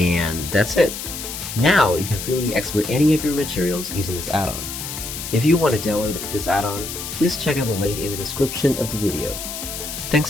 that's it! Now you can freely export any of your materials using this add-on. If you want to download this add-on, please check out the link in the description of the video. Thanks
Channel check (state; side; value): noise; left; hiss, 7 dB below the sound